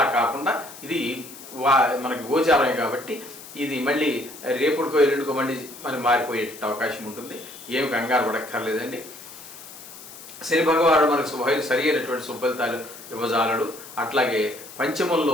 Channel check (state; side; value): noise; left; hiss, 16 dB below the sound